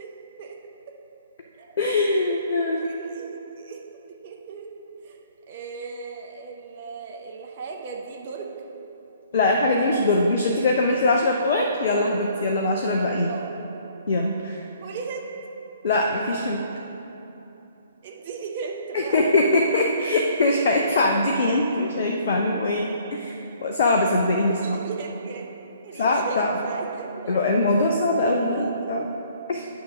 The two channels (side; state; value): both; inverted; correlation -0.60